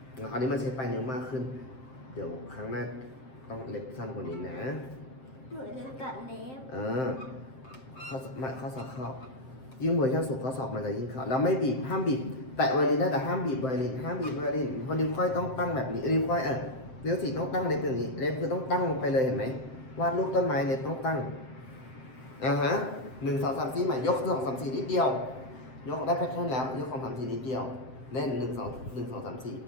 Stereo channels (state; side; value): late; right; 7.7 ms